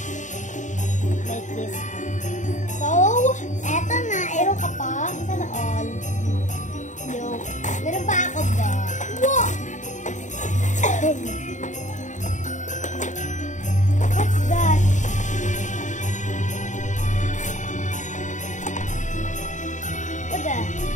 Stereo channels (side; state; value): right; late; 0.36 ms